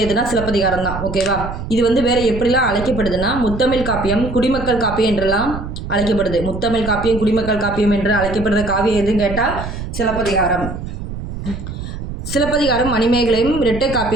எதுனா சிலப்பதிகாரம் தான் ஓகேவா. இது வந்து வேற எப்படிலாம் அழைக்கப்படுதுன்னா முத்தமிழ் காப்பியம், குடிமக்கள் காப்பியம் என்றெல்லாம் அழைக்கப்படுது. முத்தமிழ் காப்பியம், குடிமக்கள் காப்பியம் என்று அழைக்கப்படுற காவியம் எதுன்னு கேட்டால் சிலப்பதிகாரம். சிலப்பதிகாரம் மணிமேகலையும் இரட்டை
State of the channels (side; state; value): right; noise; rumble, 8 dB below the sound